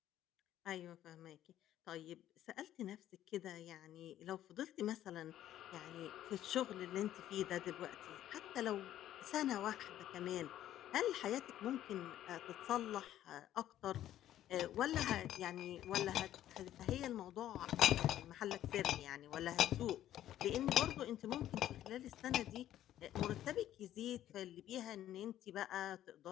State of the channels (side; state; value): right; quieter; 12.3 dB